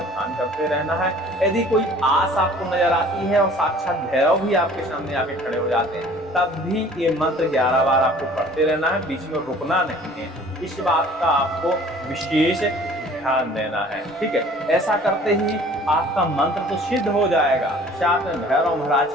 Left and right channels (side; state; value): both; normal; correlation 0.50